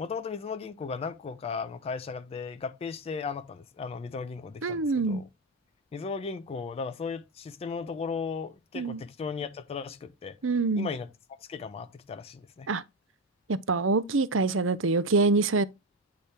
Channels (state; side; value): normal; both; correlation 0.12